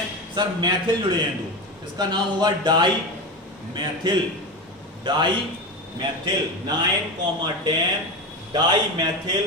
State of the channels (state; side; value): normal; both; correlation 0.21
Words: सर? मैथिल जुड़े हैं 2। इसका नाम होगा डाई मैथिल 9,10 डाई मैथिल